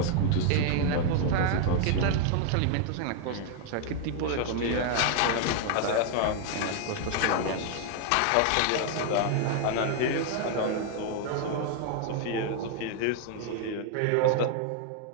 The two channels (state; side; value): different; both; correlation 0.00